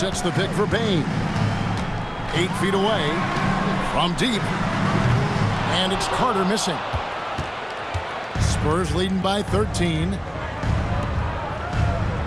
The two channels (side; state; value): both; identical; correlation 1.00